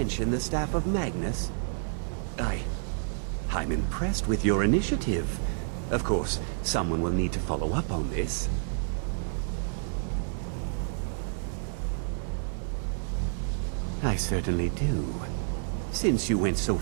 the staff of Magnus? I'm impressed with your initiative. Of course, someone will need to follow up on this. I certainly do. Since you went so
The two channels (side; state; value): left; silent; 56 dB below the other